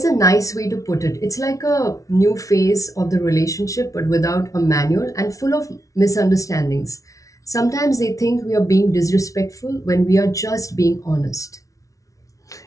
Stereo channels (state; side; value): late; right; 0.16 ms